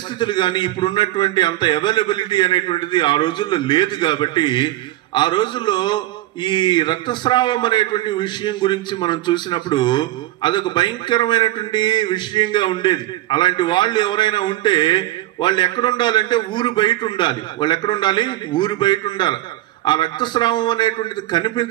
కానీ ఇప్పుడు ఉన్నటువంటి అంత అవైలబిలిటీ అనేటువంటిది ఆ రోజుల్లో లేదు. కాబట్టి ఆ రోజుల్లో ఈ రక్తస్రావం అనేటువంటి విషయం గురించి మనం చూసినప్పుడు అదొక భయంకరమైనటువంటి విషయంగా ఉండేది. అలాంటి వాళ్ళు ఎవరైనా ఉంటే వాళ్ళు ఎక్కడ ఉండాలంటే ఊరు బయట ఉండాలి. వాళ్ళు ఎక్కడ ఉండాలి? ఊరు బయట ఉండాలి. ఆ రక్తస్రావం అనేటువంటిది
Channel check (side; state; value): left; quieter; 15.8 dB